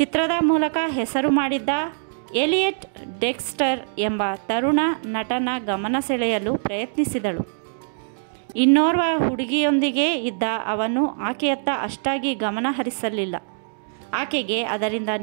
ಮೂಲಕ ಹೆಸರು ಮಾಡಿದ್ದ ಎಲಿಯಟ್ ಡೆಕ್ಸ್ಟರ್ ಎಂಬ ತರುಣ ನಟನ ಗಮನ ಸೆಳೆಯಲು ಪ್ರಯತ್ನಿಸಿದಳು. ಇನ್ನೋರ್ವ ಹುಡುಗಿಯೊಂದಿಗೆ ಇದ್ದ ಅವನು ಆಕೆಯತ್ತ ಅಷ್ಟಾಗಿ ಗಮನ ಹರಿಸಲಿಲ್ಲ. ಆಕೆಗೆ ಅದರಿಂದ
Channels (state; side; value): silent; left; digital silence